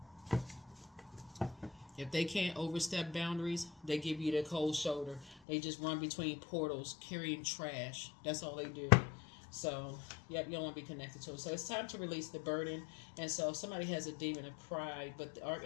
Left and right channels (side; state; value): right; drops out; at 5.4 s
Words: If they can't overstep boundaries, they give you the cold shoulder. They just run between portals carrying trash. That's all they do. So, yep, you don't want to be connected to it. So it's time to release the burden. And so if somebody has a demon of pride, but the